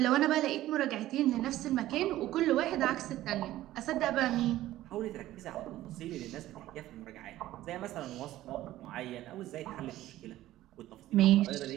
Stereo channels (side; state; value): left; quieter; 14.8 dB